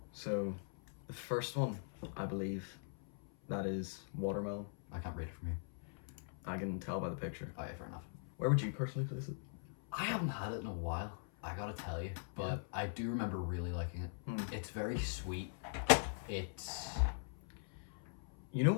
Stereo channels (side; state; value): right; silent; 50 dB below the other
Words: So, the first one, I believe, that is watermelon. I can't read it from here. I can tell by the picture. Oh yeah, fair enough. Where would you personally place it? I haven't had it in a while, I gotta tell you, but I do remember really liking it. It's very sweet. It's... You know